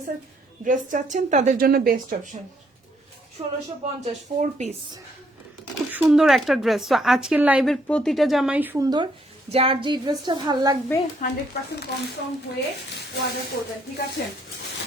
ড্রেস চাচ্ছেন তাদের জন্য বেস্ট অপশন। 1650, 4 পিস, খুব সুন্দর একটা ড্রেস। তো আজকের লাইভের প্রতিটা জামাই সুন্দর। যার যে ড্রেসটা ভাল লাগবে 100% কনফার্ম হয়ে অর্ডার করবেন, ঠিক আছে?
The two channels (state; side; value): normal; both; correlation 0.69